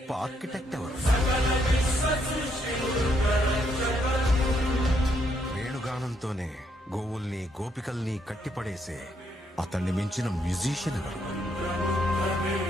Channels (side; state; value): both; normal; correlation 0.74